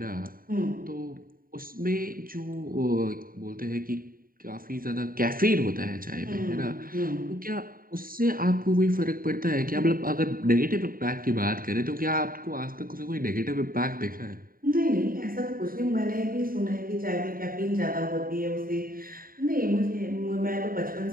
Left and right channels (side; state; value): left; late; 0.41 ms